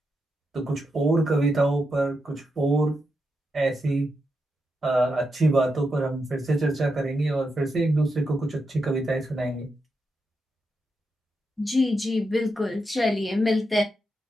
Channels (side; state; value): both; normal; correlation 0.85